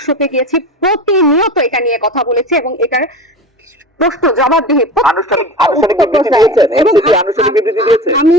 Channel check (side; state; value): both; normal; correlation 0.32